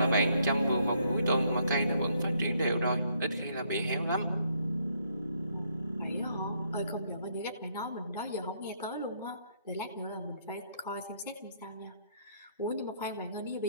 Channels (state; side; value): inverted; both; correlation -0.71